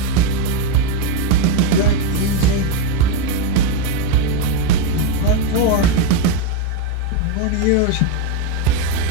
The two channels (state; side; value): different; both; correlation 0.02